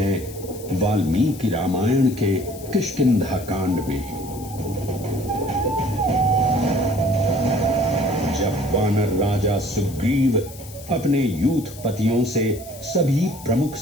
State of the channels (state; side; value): noise; left; hiss, 17 dB below the sound